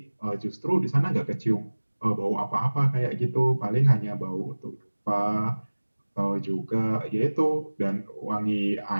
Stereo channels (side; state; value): both; inverted; correlation -1.00